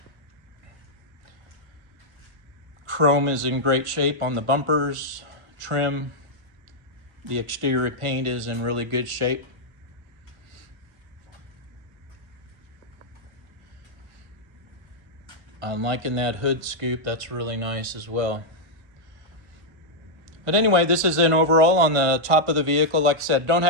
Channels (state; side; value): late; left; 1.4 ms